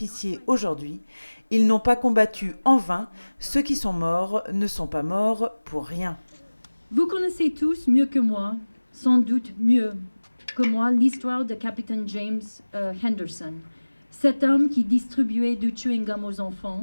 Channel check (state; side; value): inverted; both; correlation -1.00